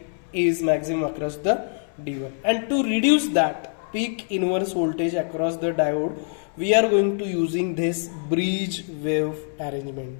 is maximum across the D1. And to reduce that peak inverse voltage across the diode, we are going to using this bridge wave arrangement,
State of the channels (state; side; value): silent; right; 62 dB below the other